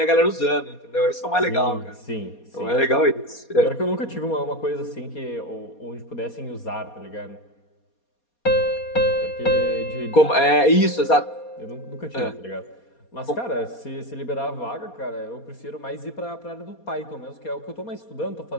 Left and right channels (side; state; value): right; late; 4.2 ms